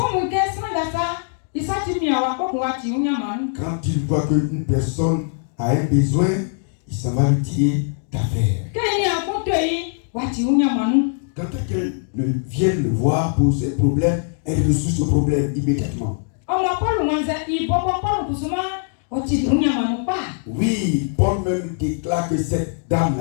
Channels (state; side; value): silent; right; digital silence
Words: Omu ke sanga sa isati miawa ko wati unyamanu. Quand il voit qu'une personne a un besoin, il s'en va lui tirer d'affaires. Keni akoto yi wati unyamanu. Quand quelqu'un vient le voir pour ses problèmes, elle résout ce problème immédiatement. Omo Paul wanza ibobo Paul kusuma oti unyamanu pa. Oui, Paul même déclare que cette